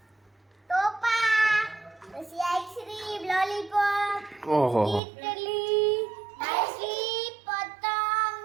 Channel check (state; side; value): drops out; left; at 5.0 s